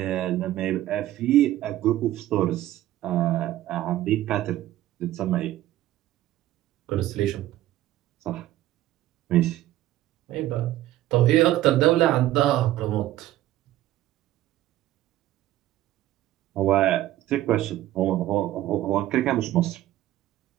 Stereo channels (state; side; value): quieter; left; 14.5 dB